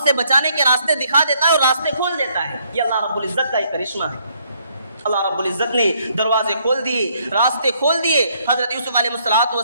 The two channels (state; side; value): inverted; both; correlation -0.69